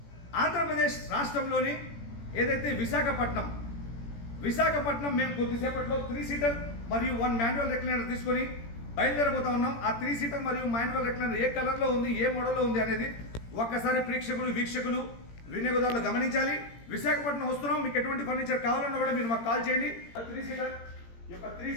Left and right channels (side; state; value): right; late; 17 ms